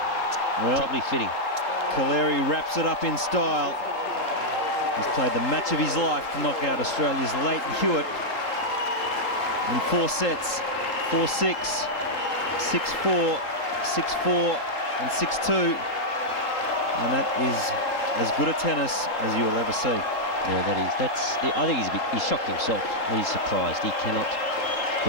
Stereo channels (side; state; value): right; late; 3.8 ms